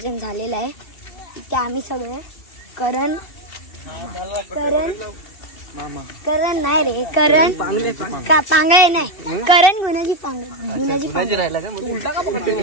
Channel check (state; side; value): late; right; 2.7 ms